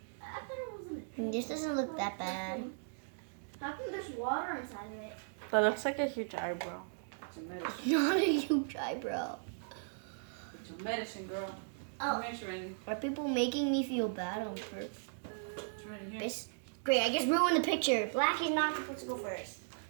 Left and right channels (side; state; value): left; silent; digital silence